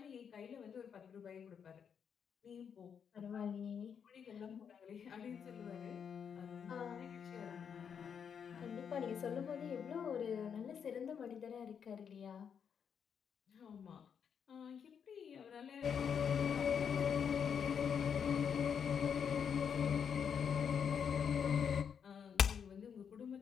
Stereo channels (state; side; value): quieter; right; 7.3 dB